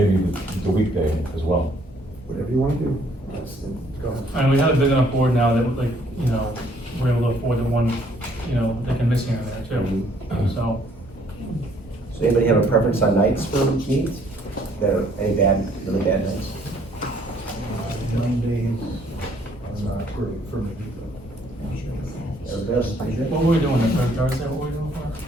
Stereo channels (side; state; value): both; normal; correlation 0.64